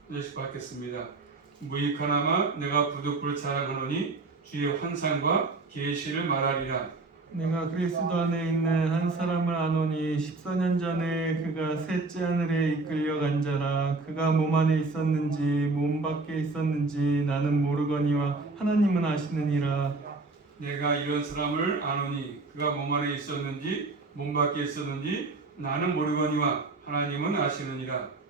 절씩 받겠습니다. 무익하나마 내가 부득불 자랑하노니 주의 환상과 계시를 말하리라. 내가 그리스도 안에 있는 한 사람을 아노니 14년 전에 그가 셋째 하늘에 이끌려간 자라. 그가 몸 안에 있었는지 몸 밖에 있었는지 나는 모르거니와 하나님은 아시느니라. 내가 이런 사람을 아노니 그가 몸 안에 있었는지 몸 밖에 있었는지 나는 모르거니와 하나님은 아시느니라.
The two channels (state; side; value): quieter; left; 3.5 dB